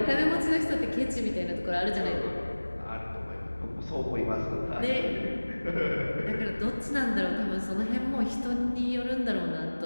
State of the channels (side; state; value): both; inverted; correlation -1.00